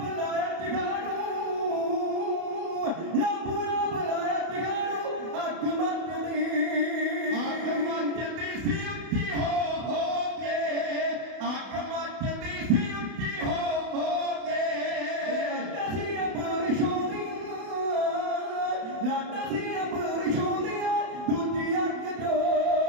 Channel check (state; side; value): late; left; 31 ms